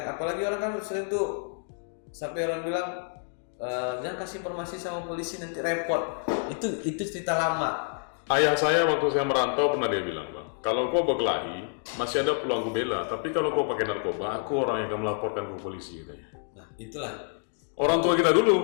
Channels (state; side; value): silent; right; 59 dB below the other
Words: Apalagi orang kan sering tuh sampai orang bilang jangan kasih informasi sama polisi nanti repot. Itu cerita lama. Ayah saya waktu saya merantau pernah dia bilang, Bang, kalau kau berkelahi, masih ada peluang ku bela, tapi kalau kau pakai narkoba, aku orang yang akan melaporkan ke polisi, katanya. Nah, itulah Orang tua kita